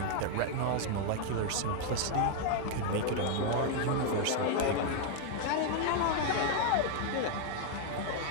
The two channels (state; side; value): different; both; correlation 0.00